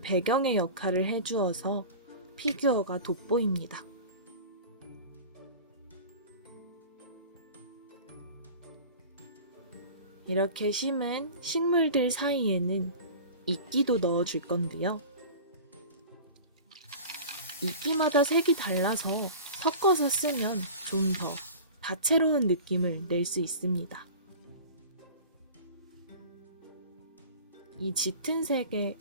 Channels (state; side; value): inverted; both; correlation -0.37